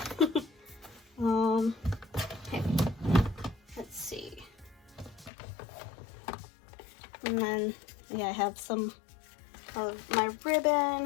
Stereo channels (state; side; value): drops out; right; at 5.3 s